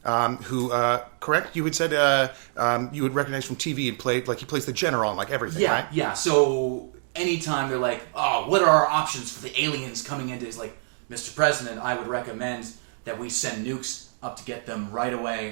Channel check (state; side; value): silent; left; 61 dB below the other